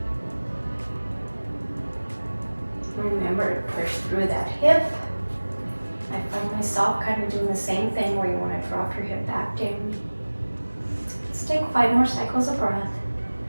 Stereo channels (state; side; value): inverted; both; correlation -1.00